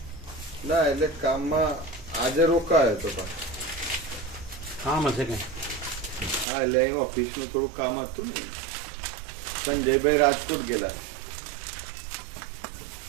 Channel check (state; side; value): drops out; left; at 6.5 s